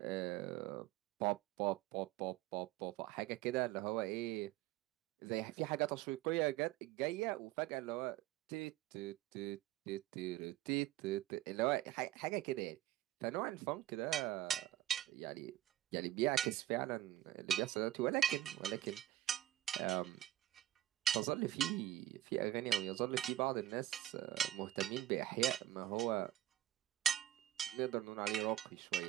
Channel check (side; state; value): left; quieter; 13.4 dB